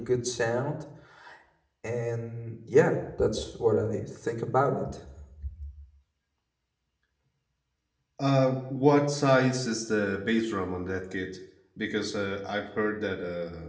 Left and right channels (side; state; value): both; identical; correlation 1.00